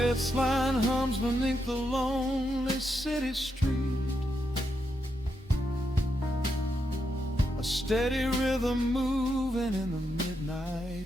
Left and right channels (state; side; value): normal; both; correlation 0.83